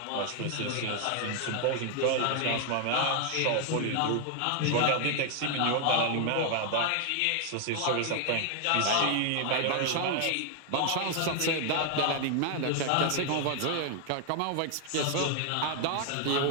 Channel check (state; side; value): different; both; correlation 0.00